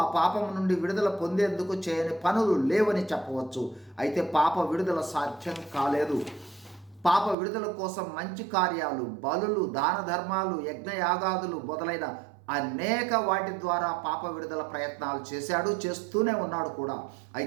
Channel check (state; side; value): drops out; left; at 7.4 s